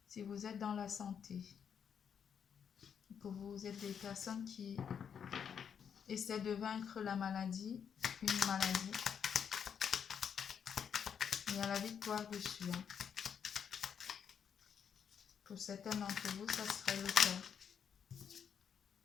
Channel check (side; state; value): right; quieter; 7.6 dB